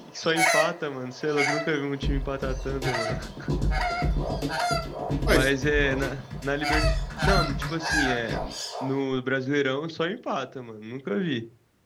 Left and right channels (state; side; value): identical; both; correlation 1.00